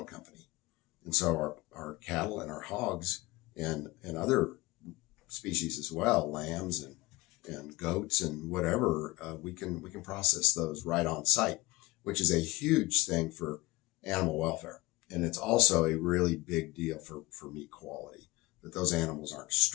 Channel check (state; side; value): quieter; right; 21.2 dB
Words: company. And so our cattle and our hogs and other species as well, lambs and goats and whatever, we can process those right on site, which is a huge thing for animal welfare. And it's also a really big deal for meat quality, that those animals aren't